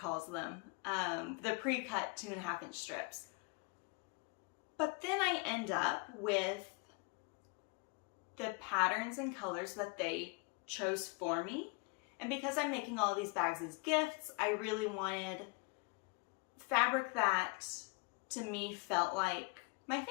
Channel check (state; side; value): quieter; right; 30.2 dB